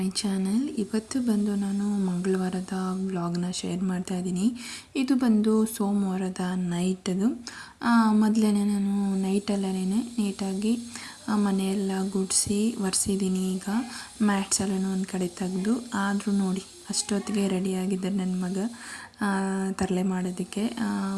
channel. ಇವತ್ತು ಬಂದು ನಾನು ಮಂಗಳವಾರದ ವ್ಲಾಗ್ನ ಶೇರ್ ಮಾಡ್ತಾ ಇದ್ದೀನಿ. ಇದು ಬಂದು ಸೋಮವಾರದ ನೈಟದು. ಮೊದಲೇ ನಾನು ನೈಟಲ್ಲೇ ನೀಟಾಗಿ ಮನೆಯೆಲ್ಲ ಗುಡಿಸಿ ಒರೆಸಿದ್ದೀನಿ. ಈಗ ಮ್ಯಾಟ್ಸ್ ಎಲ್ಲನೂ ಒಂದು ಕಡೆ ತೆಗೆದು, ಆದರೂ ನೋಡಿ ಅಷ್ಟೊತ್ತಿಗೆ ರೆಡಿಯಾಗಿದ್ದೆ ನನ್ನ ಮಗ ತರಲೆ ಮಾಡೋದಕ್ಕೆ.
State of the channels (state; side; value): identical; both; correlation 1.00